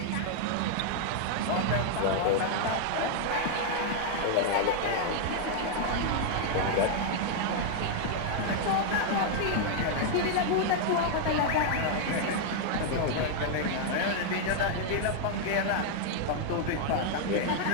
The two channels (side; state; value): both; different; correlation 0.00